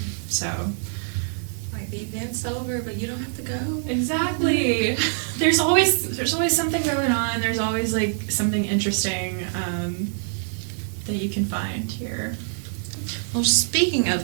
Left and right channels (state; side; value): silent; left; 62 dB below the other